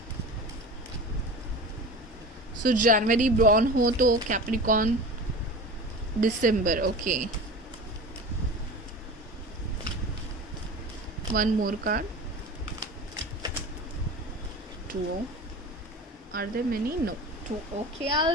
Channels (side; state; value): both; normal; correlation 0.33